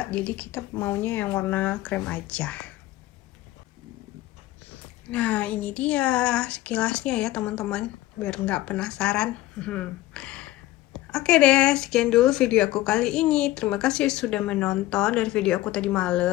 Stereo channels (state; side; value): quieter; right; 16.2 dB